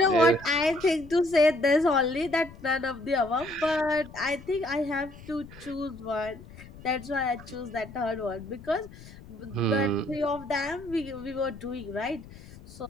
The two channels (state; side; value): noise; left; rumble, 18 dB below the sound